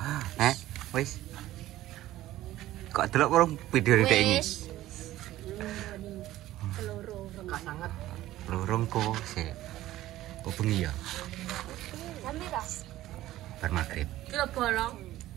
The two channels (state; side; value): quieter; left; 15.1 dB